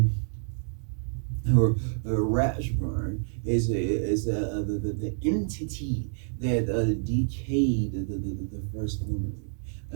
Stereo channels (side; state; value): left; silent; digital silence